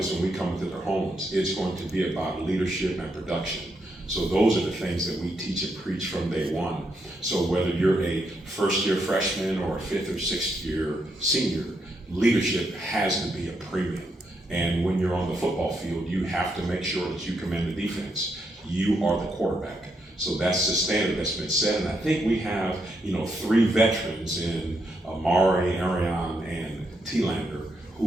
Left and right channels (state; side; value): normal; both; correlation 0.79